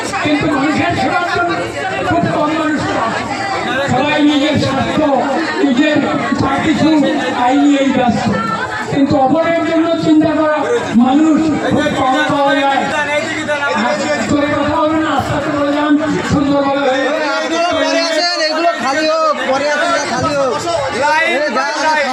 কিন্তু মানুষের সেবার জন্য খুব কম মানুষ। সবাই নিজের স্বার্থ, নিজের যা কিছু আই নিয়েই ব্যস্ত, কিন্তু অপরের জন্য চিন্তা করা মানুষ খুব কম পাওয়া যায়। কথা হবে না, আস্তে আস্তে বলে যান সুন্দরভাবে। এগুলো খালি হোক, পরে খালি হোক।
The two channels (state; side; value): identical; both; correlation 1.00